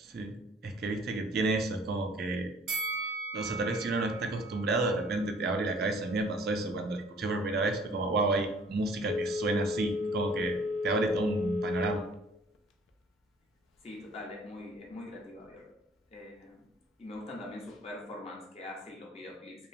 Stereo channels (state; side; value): normal; both; correlation 0.55